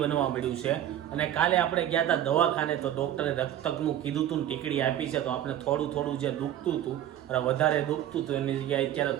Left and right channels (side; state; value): left; quieter; 11.6 dB